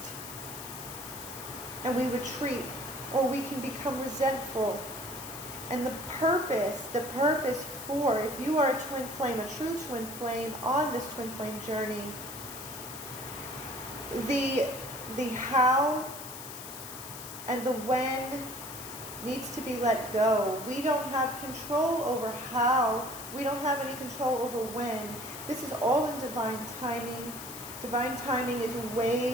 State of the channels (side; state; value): left; noise; hiss, 11 dB below the sound